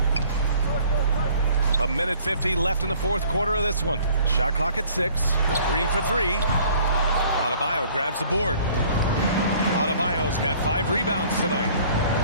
A minute 50 left in the fourth quarter of this one. Shot clock at 6. Green for 3. Adebayo grabs the board. Adebayo's got 5 rebounds tonight.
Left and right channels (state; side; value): inverted; both; correlation -0.55